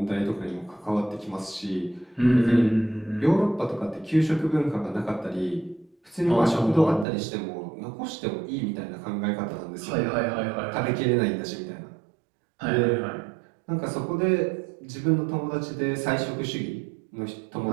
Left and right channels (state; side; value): drops out; left; at 7.1 s